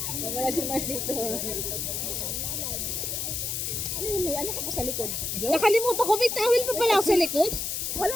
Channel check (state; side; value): noise; left; hiss, 2 dB below the sound